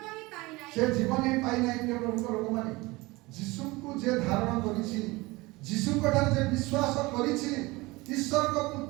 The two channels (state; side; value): quieter; left; 22.2 dB